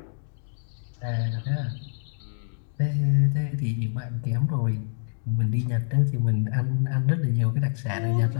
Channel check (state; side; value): silent; right; digital silence